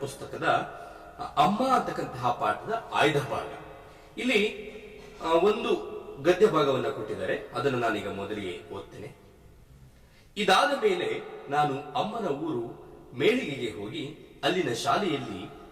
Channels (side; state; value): both; identical; correlation 1.00